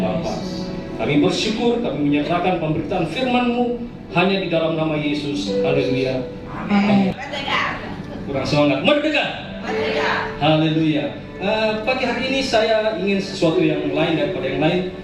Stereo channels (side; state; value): both; identical; correlation 1.00